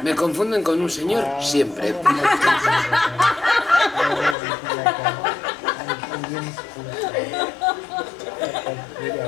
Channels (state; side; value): drops out; right; at 4.4 s